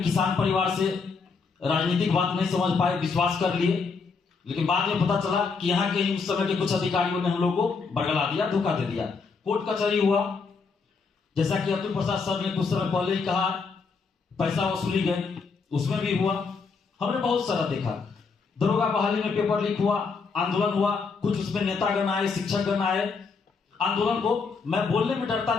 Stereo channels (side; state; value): right; quieter; 4.9 dB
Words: किसान परिवार से, राजनीतिक बात नहीं समझ पाए, विश्वास कर लिए। लेकिन बाद में पता चला कि यहाँ के ही उस समय के कुछ अधिकारियों ने हम लोग को बरगला दिया, धोखा दे दिया। कोर्ट कचहरी हुआ, जैसा कि अतुल प्रसाद सर ने कुछ समय पहले ही कहा, पैसा वसूली गए, उसमें भी हुआ। हमने बहुत सारा देखा। दरोगा बहाली में पेपर लीक हुआ, आंदोलन हुआ, कुछ उसमें नेतागण आए, शिक्षकगण आए। आंदोलन को मैं बोलने में डरता